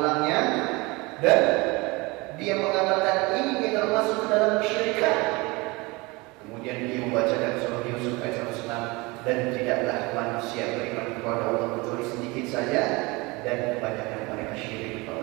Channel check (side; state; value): left; quieter; 24.6 dB